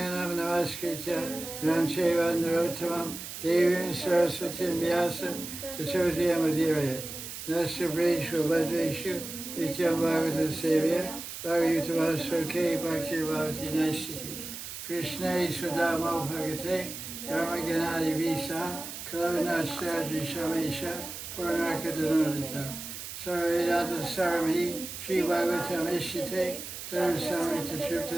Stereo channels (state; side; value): noise; right; hiss, 9 dB below the sound